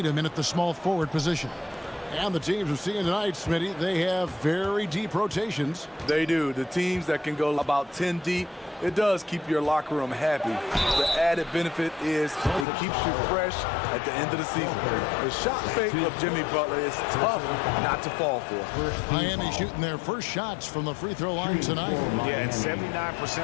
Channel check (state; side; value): drops out; right; at 12.7 s